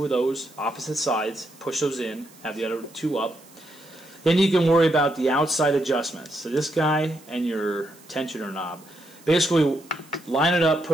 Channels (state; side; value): noise; right; hiss, 25 dB below the sound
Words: of those opposite sides, push those in, have the other two up. Then you can worry about the outside adjustments. So this guy and your tensioner knob. Basically, line it up,